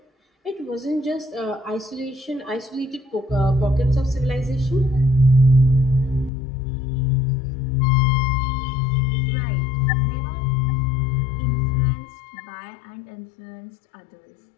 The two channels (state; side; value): drops out; right; at 6.3 s